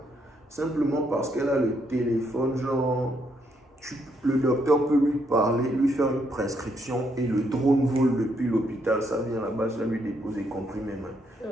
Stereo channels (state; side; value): normal; both; correlation 0.75